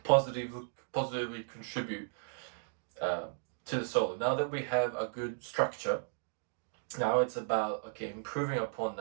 positively contribute to the solo. Now that we have a good structure, now it's about improving upon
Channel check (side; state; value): left; silent; digital silence